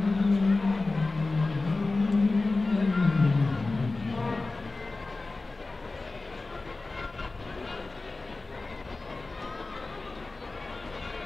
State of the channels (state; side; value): quieter; right; 3.4 dB